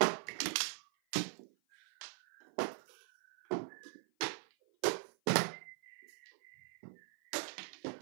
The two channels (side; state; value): left; silent; 51 dB below the other